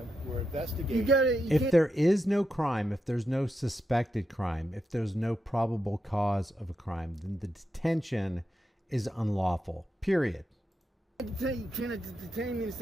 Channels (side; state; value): both; normal; correlation 0.86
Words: We're investigating. You got it. If there is no crime, if there's no suspected crime, if there's no probable cause of a crime, then the detention is unlawful. Period. You cannot detain me in the